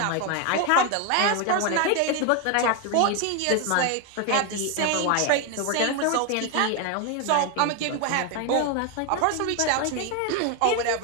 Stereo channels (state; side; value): different; both; correlation 0.01